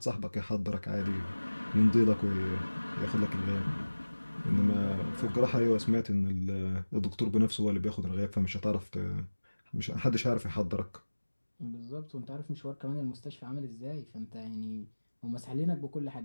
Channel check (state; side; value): inverted; both; correlation -1.00